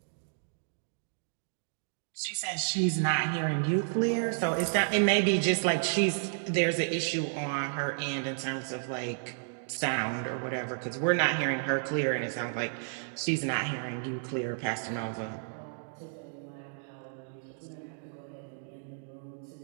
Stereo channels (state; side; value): silent; left; digital silence